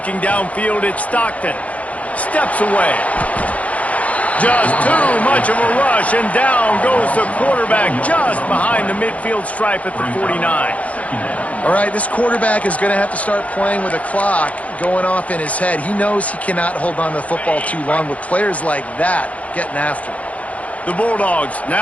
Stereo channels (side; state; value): right; late; 0.067 ms